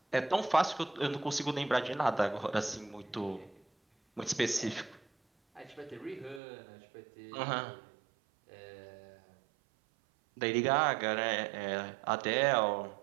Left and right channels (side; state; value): left; drops out; at 6.4 s